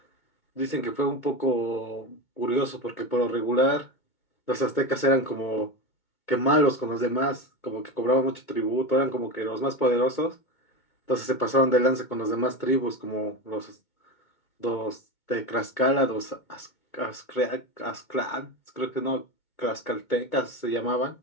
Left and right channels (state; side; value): late; right; 2.2 ms